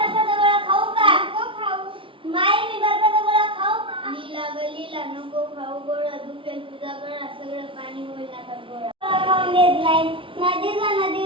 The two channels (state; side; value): late; left; 0.25 ms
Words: गोळा खाऊ का? खाऊ. माई मी बरबटा गोळा खाऊ का? लीला ग लीला नको खाऊ गोळा, दुखेल तुझा गळा, सगळं पाणी होईल आता गोळा. खाऊन देत नाही. नदी जा